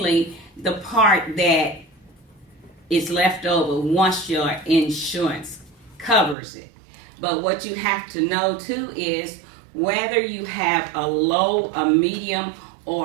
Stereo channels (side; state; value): left; drops out; at 6.4 s